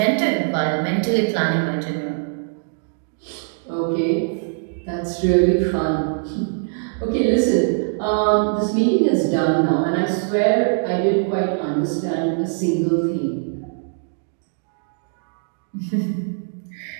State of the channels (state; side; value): silent; left; digital silence